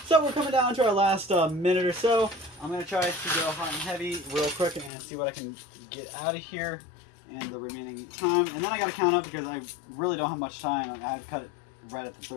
So we're coming down to our last minute or so. I'm going to try to go hot and heavy real quick and see what I can get out of here in the remaining time. And then I got to count up, because I really don't have much time. I've cut it right at the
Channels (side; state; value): right; drops out; at 4.9 s